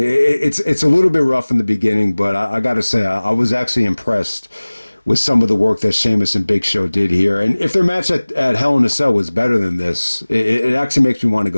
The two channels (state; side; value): inverted; both; correlation -1.00